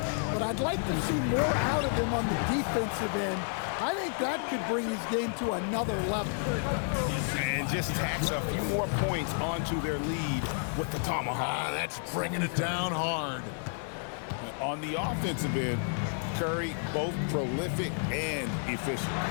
but I'd like to see more out of him on the defensive end. I think that could bring his game to another level. And just tacks a few more points onto their lead with the tomahawk. That's bringing it down hard. On the offensive end, Curry both prolific and efficient.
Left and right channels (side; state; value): right; silent; 57 dB below the other